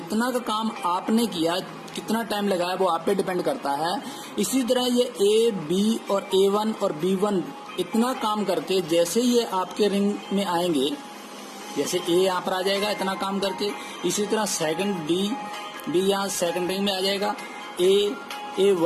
का काम आपने किया, कितना टाइम लगाया वो आप पे डिपेंड करता है। इसी तरह ये A, B और A1 और B1 इतना काम करके जैसे ये आपके रिंग में आएंगे, जैसे A यहाँ पर आ जाएगा इतना काम करके, इसी तरह सेकंड B यहाँ सेकंड रिंग में आ जाएगा,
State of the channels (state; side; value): identical; both; correlation 1.00